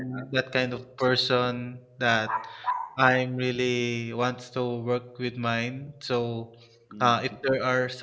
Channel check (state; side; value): identical; both; correlation 1.00